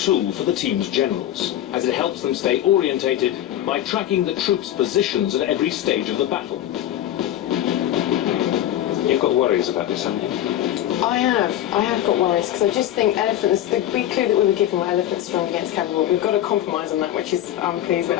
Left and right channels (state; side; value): quieter; right; 12.3 dB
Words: for the team's generals, as it helps them stay orientated by tracking the troops' positions at every stage of the battle. You've got worries about this, haven't you? I have got worries, because I just think elephants, the big clue that we were given were elephants strong against cavalry. We've got to compromise on that, which is, I'm pleased with,